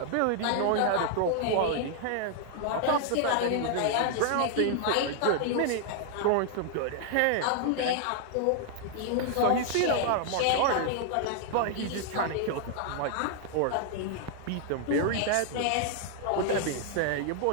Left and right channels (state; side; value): different; both; correlation 0.00